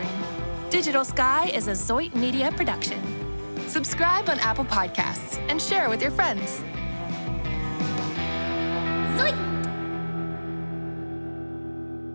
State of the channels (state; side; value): inverted; both; correlation -1.00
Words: Digital Sky is a Zoit Media production. Subscribe on Apple Podcasts and share with your friends.